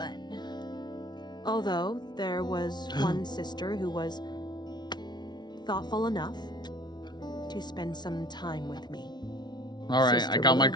Although there was one sister who was thoughtful enough to spend some time with me. All right, Sister I got my Blue.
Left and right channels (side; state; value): right; late; 0.20 ms